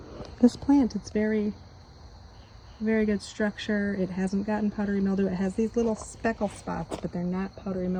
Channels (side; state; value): both; identical; correlation 1.00